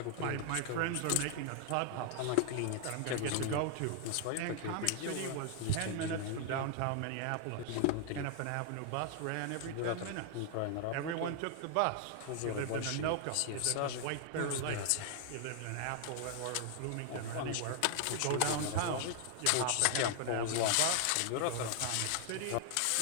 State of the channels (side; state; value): both; different; correlation 0.00